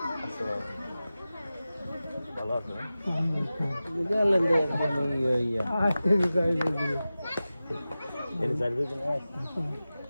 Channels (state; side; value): inverted; both; correlation -0.95